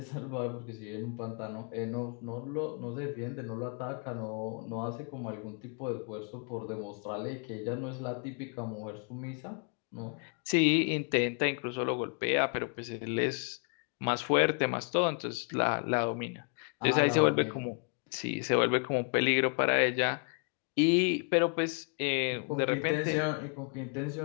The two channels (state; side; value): quieter; right; 38.5 dB